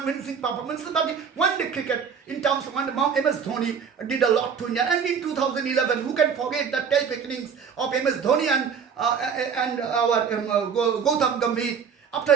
performances, but one-day cricket, in terms of MS Dhoni did a lot to India. And in 2011, who can forget the terrific innings of MS Dhoni and our Gautam Gambhir after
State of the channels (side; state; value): left; quieter; 6.7 dB